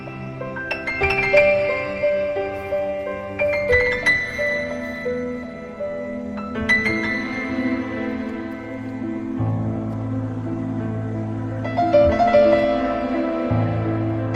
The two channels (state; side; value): identical; both; correlation 1.00